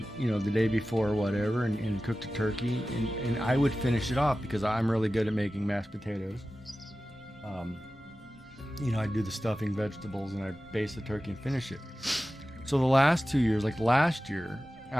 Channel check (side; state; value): both; normal; correlation 0.95